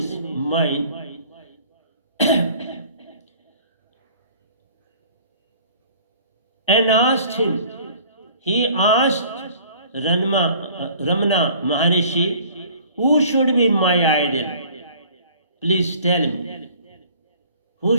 mind, and asked him. He asked Ramana Maharishi, who should be my idol? Please tell me, who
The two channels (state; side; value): inverted; both; correlation -0.52